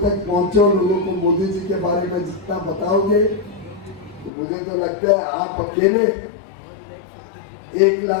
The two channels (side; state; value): right; drops out; at 4.3 s